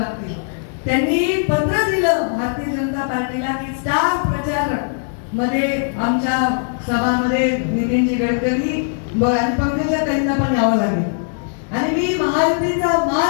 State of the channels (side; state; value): right; silent; digital silence